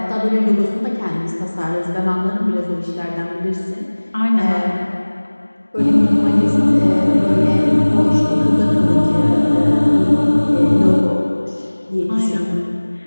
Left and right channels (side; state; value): both; inverted; correlation -1.00